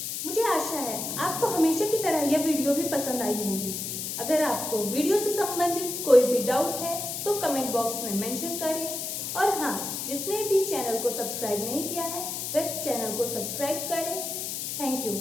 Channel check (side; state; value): left; noise; hiss, 4 dB below the sound